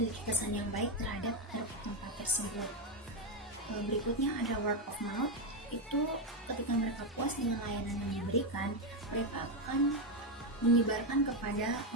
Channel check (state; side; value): normal; both; correlation 0.06